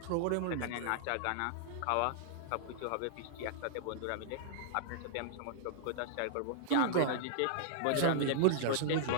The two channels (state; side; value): different; both; correlation -0.01